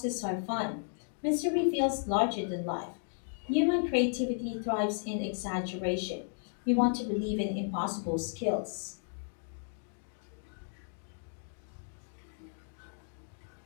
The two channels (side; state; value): right; silent; digital silence